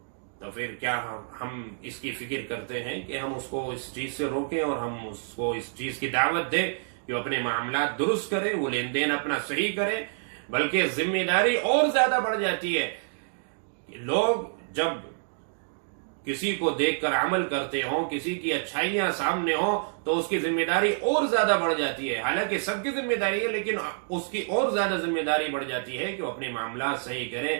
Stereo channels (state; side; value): silent; left; digital silence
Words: تو پھر کیا ہم اس کی فکر کرتے ہیں کہ ہم اس کو اس چیز سے روکیں اور ہم اس کو اس چیز کی دعوت دیں کہ وہ اپنے معاملات درست کرے، وہ لین دین اپنا صحیح کرے. بلکہ ذمہ داری اور زیادہ بڑھ جاتی ہے. لوگ جب کسی کو دیکھ کر عمل کرتے ہوں، کسی کی اچھائیاں سامنے ہوں، تو اس کی ذمہ داری اور زیادہ بڑھ جاتی ہے. حالانکہ سب کی ذمہ داری ہے، لیکن اس کی اور زیادہ ذمہ داری بڑھ جاتی ہے کہ وہ اپنے معاملات صحیح کریں،